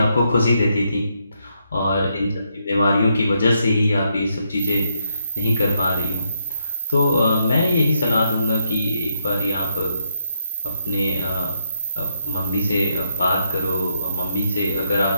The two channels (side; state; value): both; inverted; correlation -0.79